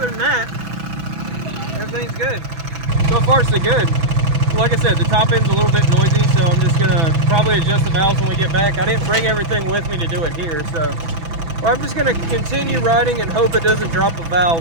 than that, everything's good. So far, so good. Like I said, the top end's a little bit noisy, so I'm just going to probably adjust the valves when we get back. I didn't bring everything with me to do it here, so I'm just going to continue riding and hope it doesn't drop a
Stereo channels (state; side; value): late; left; 6.1 ms